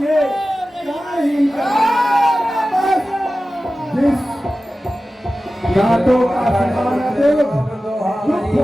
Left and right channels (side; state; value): both; normal; correlation 0.95